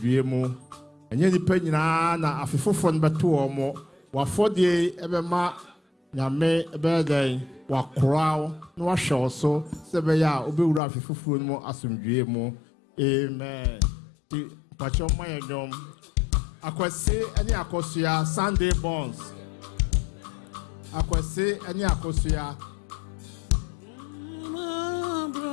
mu enye nipa nyina na afefoforo no beto o mo wafodie ebema nyame ebeden wakrao no wahwe so sebe ya obewura afefoforo no mu asomdwie mu amen ti pacho mayedom akwese ani akosua Sunday bonds akwese ani akosua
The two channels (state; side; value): drops out; right; at 10.8 s